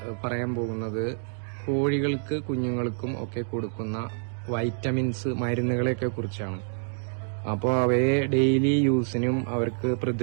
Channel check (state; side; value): silent; left; digital silence